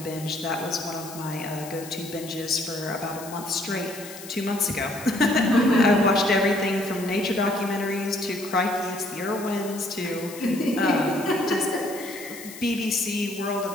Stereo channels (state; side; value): noise; left; hiss, 14 dB below the sound